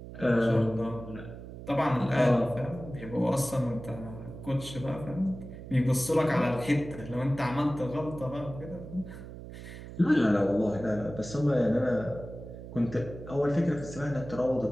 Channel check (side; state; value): right; noise; hum, 12 dB below the sound